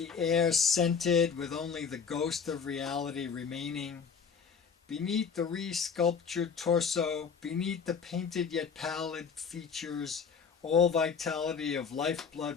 air scented with only the ghost of reality remaining. Beneath the re-sculptured torso, beneath the painted yet pallid features, all vitality of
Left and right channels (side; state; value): right; quieter; 6.2 dB